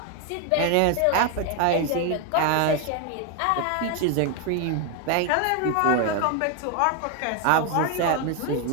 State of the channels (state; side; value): different; both; correlation 0.01